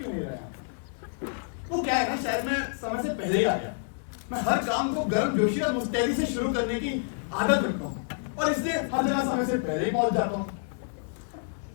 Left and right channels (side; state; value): right; silent; digital silence